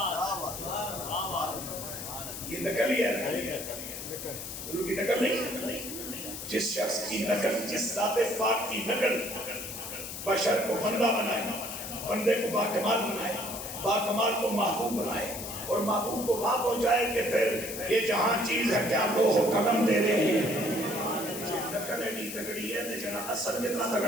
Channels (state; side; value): noise; left; hiss, 8 dB below the sound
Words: یہ نقل ہی ہے، حضور کی نقل نہیں۔ جس شخص کی نقل، جس ذات پاک کی نقل بشر کو بندہ بنائے، بندے کو باکمال بنائے، باکمال کو محبوب بنائے، اور محبوب کو وہاں پہنچائے کہ پھر یہ جہاں چیز ہے کیا لوح و قلم دے رہے ہیں۔ نقل ایڈی تگڑی ہے تو جنہاں اثر کتنا